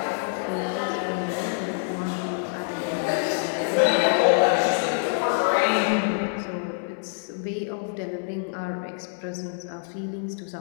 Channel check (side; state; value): right; silent; 61 dB below the other